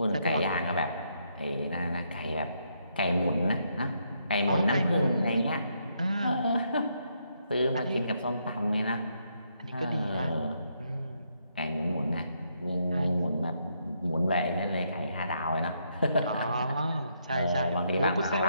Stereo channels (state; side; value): inverted; both; correlation -0.76